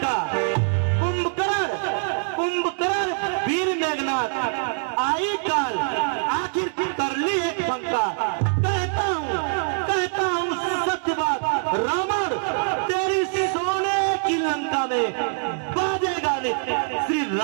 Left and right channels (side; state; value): left; silent; digital silence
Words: कुंभकर्ण वीर मेघनाथ आई काल आखिर कर ली एक शंका। कहता हूँ सत्य बात रावण, तेरी सोने की लंका में बाजेगा नित्य श्री